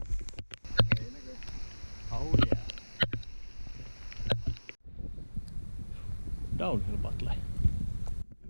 Ei näkö. Oh yeah. Downhill battle.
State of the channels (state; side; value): inverted; both; correlation -1.00